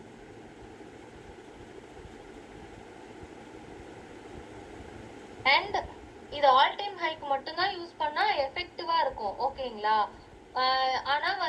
அண்ட் இது ஆல் டைம் ஹைக்கு மட்டும்தான் யூஸ் பண்ணா எஃபெக்டிவா இருக்கும். ஓகேங்களா? ஆனா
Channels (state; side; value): identical; both; correlation 1.00